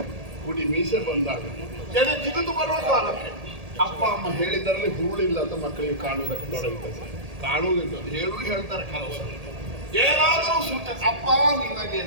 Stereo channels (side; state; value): left; late; 1.8 ms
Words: ಕುಡಿ ಮೀಸೆ ಬಂದಾಗ ಕೆರೆ ಜಿಗಿದು ಬರುವ ಕಾಲಕ್ಕೆ ಅಪ್ಪ ಅಮ್ಮ ಹೇಳಿದ್ದರಲ್ಲಿ ಹುರುಳಿಲ್ಲ ಅಂತ ಮಕ್ಕಳಿಗೆ ಕಾಣುವುದಕ್ಕೆ ತೊಡಗುತ್ತದೆ. ಕಾಣುವುದಿಲ್ಲ ಹೇಳು ಹೇಳ್ತಾರೆ ಕೆಲವು ಏನಾದರೂ ಸೂಚನೆ ಅಪ್ಪ ನಿನಗೆ